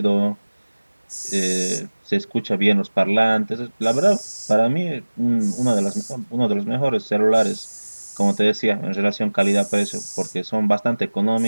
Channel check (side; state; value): both; inverted; correlation -1.00